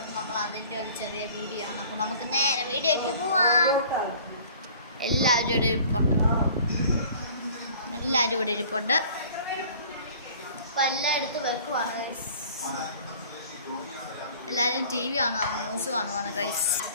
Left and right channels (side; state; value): both; inverted; correlation -0.49